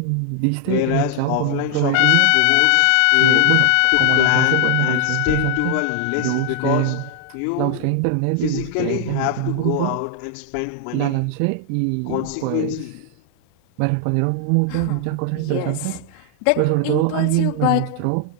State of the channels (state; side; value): different; both; correlation 0.00